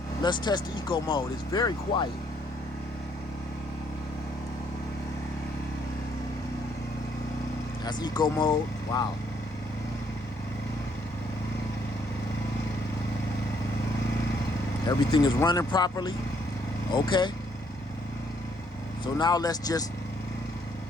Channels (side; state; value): both; normal; correlation 0.68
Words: let's test the eco mode. It's very quiet. That's eco mode. Wow. Everything is running properly. Okay. So now let's just